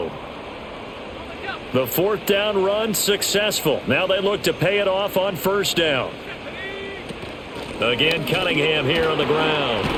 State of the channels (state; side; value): identical; both; correlation 1.00